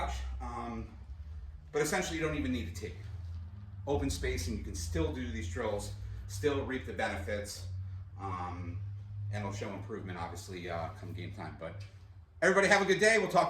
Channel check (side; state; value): both; identical; correlation 1.00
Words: But essentially, you don't even need a tee. Open space, and you can still do these drills, still reap the benefits, and it'll show improvement, obviously, come game time. But everybody have a good day. We'll talk